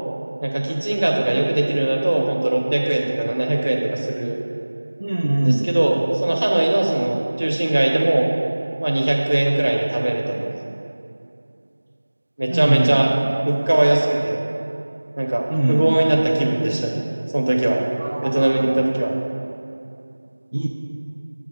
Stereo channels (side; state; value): both; inverted; correlation -1.00